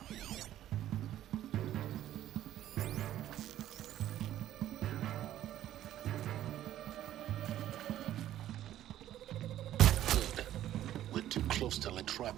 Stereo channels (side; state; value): left; quieter; 12.5 dB